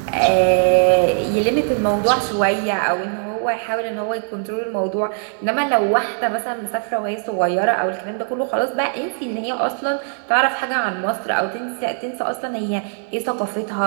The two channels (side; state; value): left; silent; 61 dB below the other